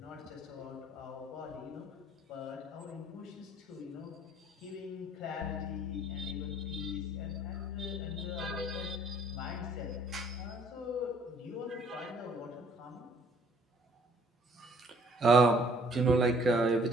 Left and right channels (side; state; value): both; normal; correlation 0.59